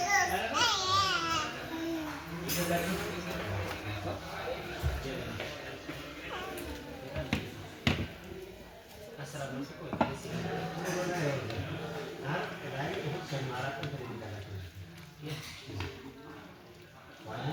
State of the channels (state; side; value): identical; both; correlation 1.00